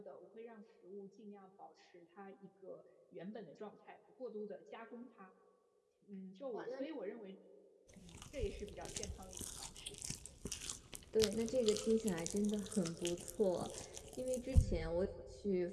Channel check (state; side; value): identical; both; correlation 1.00